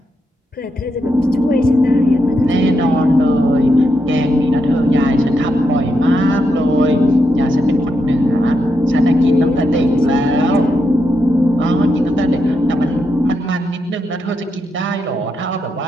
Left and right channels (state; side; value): normal; both; correlation 0.83